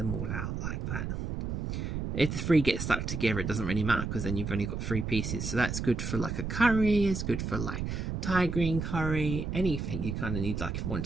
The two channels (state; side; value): noise; right; rumble, 3 dB below the sound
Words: all out like that. If the 3 get stuck together, it doesn't really matter, because then you've only got 3 pieces. So that's good for like a curry, it's good for like Thai green curry, anything you kind of need. Like if you want